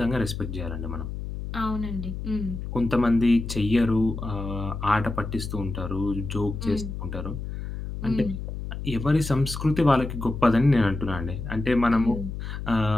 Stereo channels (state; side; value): noise; left; hum, 7 dB below the sound